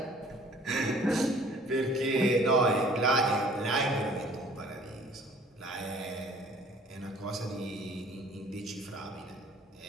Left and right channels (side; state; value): both; normal; correlation 0.53